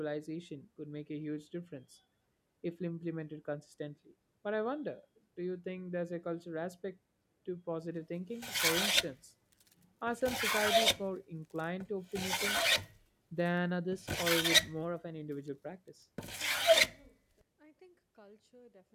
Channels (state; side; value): identical; both; correlation 1.00